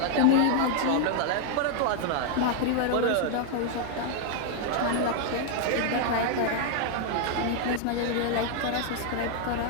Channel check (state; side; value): different; both; correlation 0.00